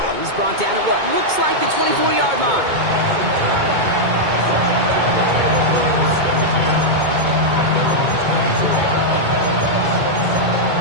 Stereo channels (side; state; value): left; late; 2.2 ms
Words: He's brought down at what looks like the 24-yard line.